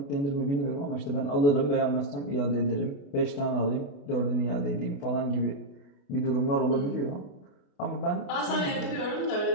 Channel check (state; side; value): late; right; 28 ms